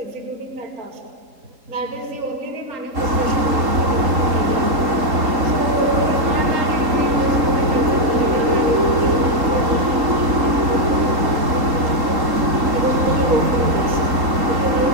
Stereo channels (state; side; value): late; left; 3.8 ms